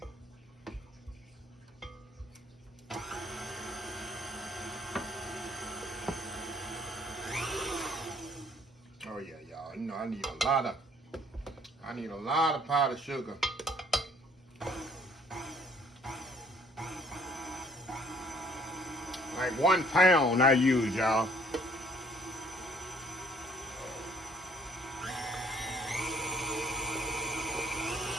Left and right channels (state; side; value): normal; both; correlation 0.61